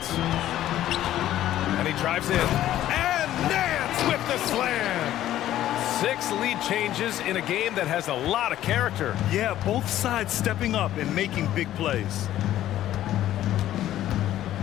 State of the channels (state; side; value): quieter; right; 13.0 dB